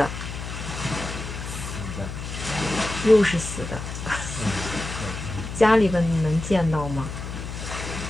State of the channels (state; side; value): noise; left; hum, 7 dB below the sound